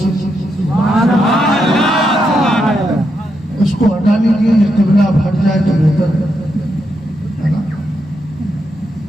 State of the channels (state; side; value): normal; both; correlation 0.82